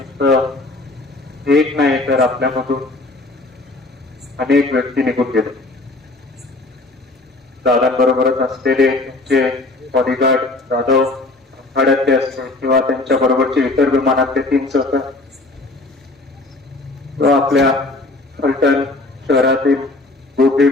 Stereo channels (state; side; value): quieter; right; 3.0 dB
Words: एक नाही तर आपल्यामधून अनेक व्यक्ती निघून गेले. दादांबरोबरच असलेले त्यांचे बॉडीगार्ड जाधव आखाड्यातले असते किंवा त्यांच्या बरोबरचे इतर विमानातले 3 सहकारी किंवा आपल्या फलटण शहरातील गोपी